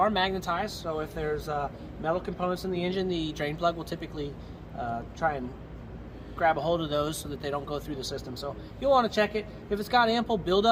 magnetized, so if there's metal components in the engine, the drain plug will typically try and grab a hold of those so that they don't go through the system. So you'll want to check it. If it's got ample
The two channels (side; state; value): both; identical; correlation 1.00